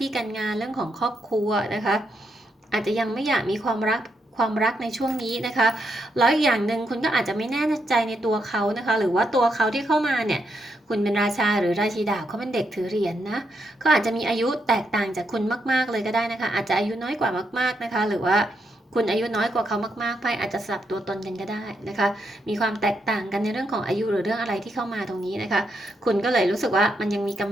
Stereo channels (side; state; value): both; normal; correlation 0.80